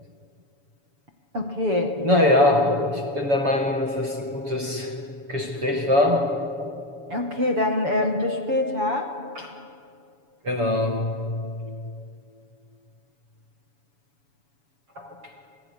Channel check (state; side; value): late; left; 7.1 ms